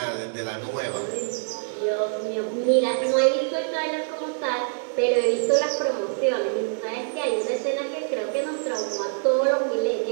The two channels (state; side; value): silent; left; digital silence